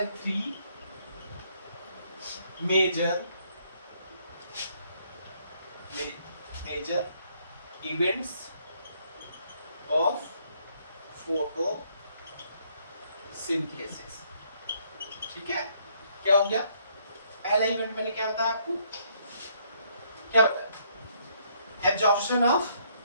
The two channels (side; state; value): both; inverted; correlation -0.69